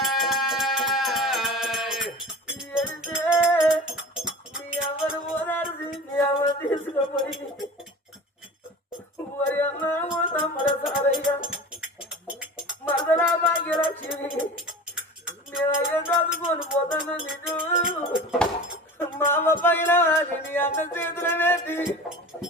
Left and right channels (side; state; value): both; normal; correlation 0.36